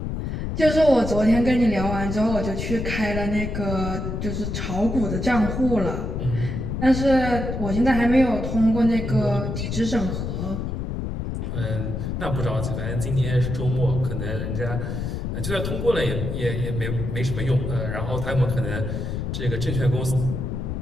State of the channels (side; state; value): left; noise; rumble, 3 dB below the sound